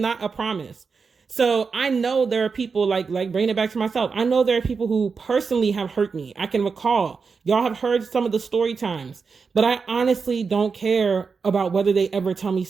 a promise. So I know there are people, like bringing it back to myself, I know there are people who personally have hurt me. I can recall, y'all have heard some of the story times, but I honestly don't care about whether they ever tell me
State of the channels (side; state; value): left; quieter; 5.2 dB